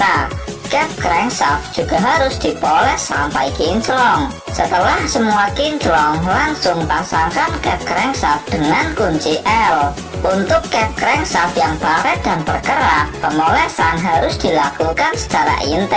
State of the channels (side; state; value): both; identical; correlation 1.00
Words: Cap crankshaft juga harus dipoles sampai kinclong. Setelah semua kinclong, langsung pasangkan cap crankshaft dengan kunci L. Untuk cap crankshaft yang baret dan berkerak, pemolesan harus dilakukan secara